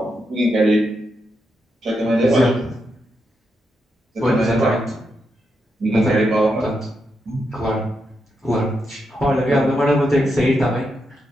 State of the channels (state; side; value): normal; both; correlation 0.83